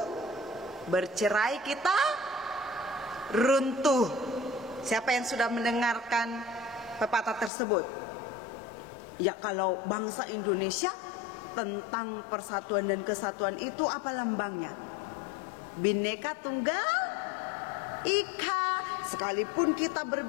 bercerai kita runtuh. Siapa yang sudah mendengarkan pepatah tersebut? Ya, kalau bangsa Indonesia tentang persatuan dan kesatuan itu apa lambangnya? Bhinneka Tunggal Ika. Sekalipun kita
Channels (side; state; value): right; drops out; at 7.5 s